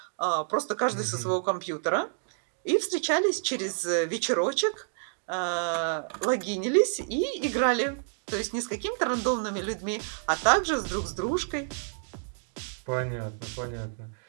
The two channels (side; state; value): left; silent; digital silence